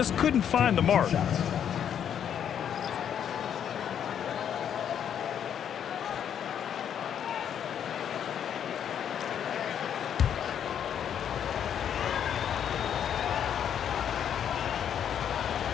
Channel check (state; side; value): quieter; right; 8.9 dB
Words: couldn't find the mark.